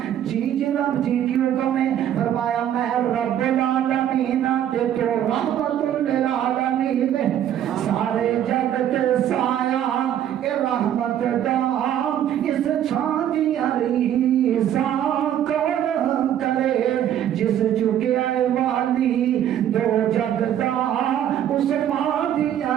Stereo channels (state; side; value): quieter; left; 10.6 dB